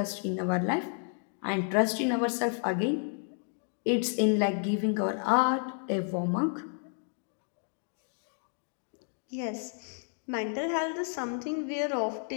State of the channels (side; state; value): right; silent; 57 dB below the other